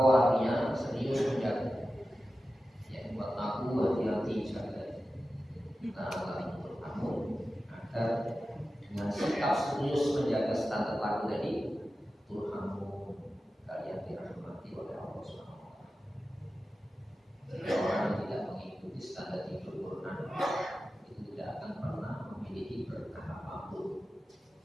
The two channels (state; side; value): normal; both; correlation 0.93